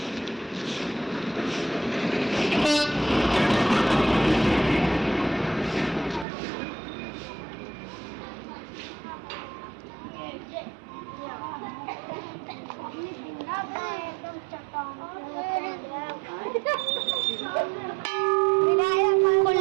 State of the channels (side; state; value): left; drops out; at 6.2 s